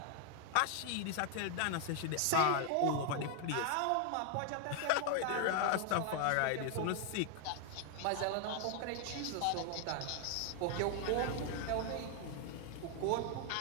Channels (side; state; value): both; different; correlation 0.00